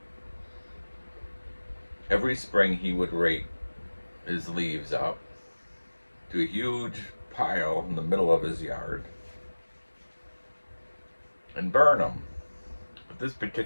Every spring he would rake his leaves up to a huge pile in the middle of his yard and burn them. But this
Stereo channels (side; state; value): both; inverted; correlation -1.00